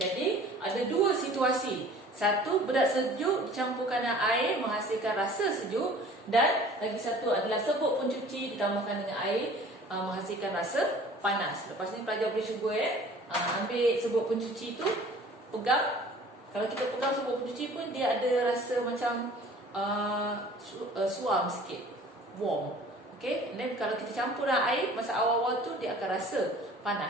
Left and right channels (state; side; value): normal; both; correlation 0.48